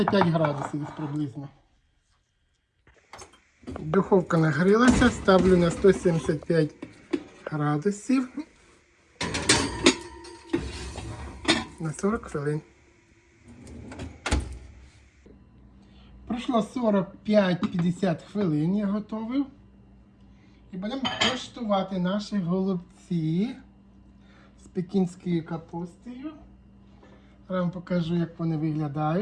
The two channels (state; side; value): identical; both; correlation 1.00